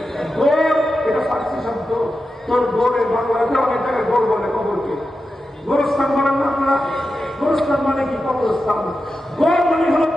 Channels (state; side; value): normal; both; correlation 0.90